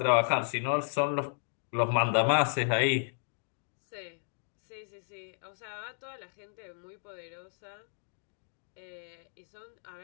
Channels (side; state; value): right; silent; digital silence